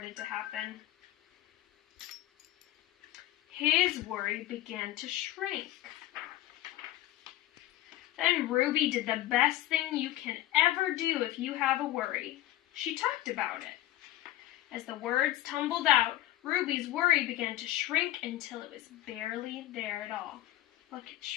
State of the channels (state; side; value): quieter; right; 14.9 dB